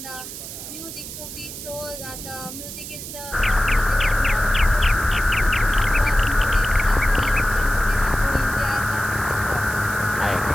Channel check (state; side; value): noise; right; hiss, 10 dB below the sound